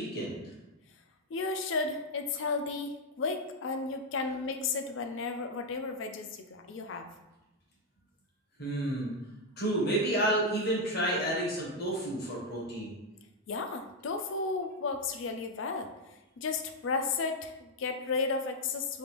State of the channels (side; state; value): both; normal; correlation 0.02